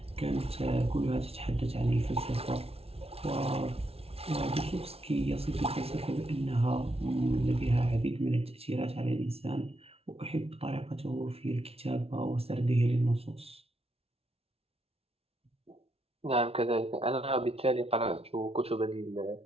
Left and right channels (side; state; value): left; late; 0.29 ms